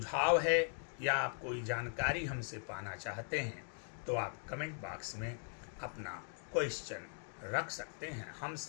है या आप कोई जानकारी हमसे पाना चाहते हैं तो आप कमेंट बॉक्स में अपना क्वेश्चन रख सकते हैं। हम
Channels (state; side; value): silent; right; 51 dB below the other